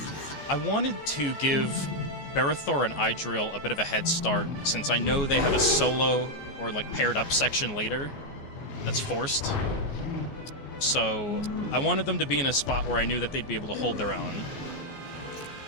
wanted to give Barithor and Idril a bit of a head start, since I know they have a solo or like paired up section later that's forced. So I wanted them to be in a spot where I knew that they'd be able to hold their own.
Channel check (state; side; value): late; right; 14 ms